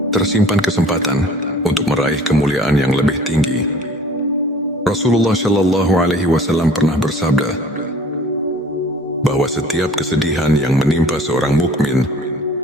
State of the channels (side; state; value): both; normal; correlation 0.49